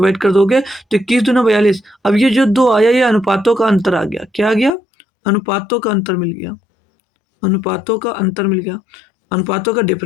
कर दोगे तो 21 दूना 42। अब ये जो 2 आया ये अनुपातों का अंतर आ गया। क्या आ गया? अनुपातों का अंतर मिल गया, अनुपातों का अंतर मिल गया, अनुपातों का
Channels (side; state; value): right; drops out; at 4.7 s